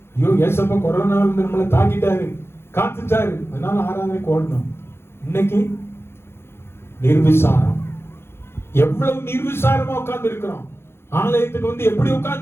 ஐயோ ஏசப்பா கொரோனா வந்து நம்மளை தாக்கிட்டாரு, காத்துட்டாரு, அதனால ஆராதனைக்கு ஓடணும். இன்னைக்கு நிர்விசாரம். எவ்வளவு நிர்விசாரமா உட்கார்ந்து இருக்கிறோம். ஆலயத்துக்கு வந்து எப்படி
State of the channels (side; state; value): right; late; 0.12 ms